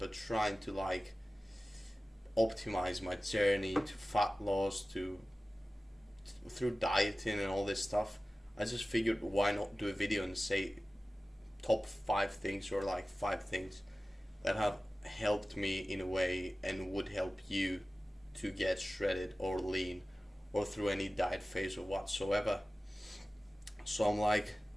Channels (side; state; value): both; normal; correlation 0.96